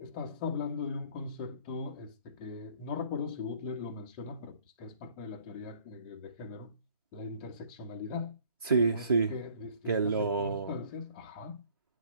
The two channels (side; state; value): both; inverted; correlation -0.56